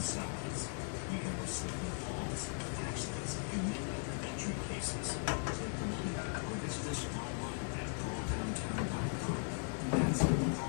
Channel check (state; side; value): silent; right; 52 dB below the other